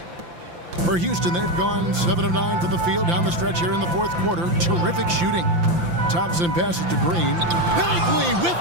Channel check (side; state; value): left; late; 5.8 ms